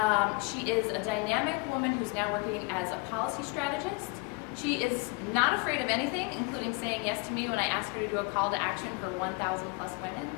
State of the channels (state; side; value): quieter; right; 27.2 dB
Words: She is a dynamic woman who's now working as a policy strategist. She is not afraid of anything, including saying yes to me when I ask her to do a call to action for 1,000 plus women.